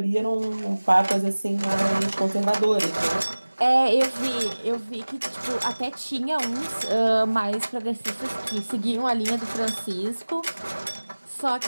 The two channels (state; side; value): inverted; both; correlation -1.00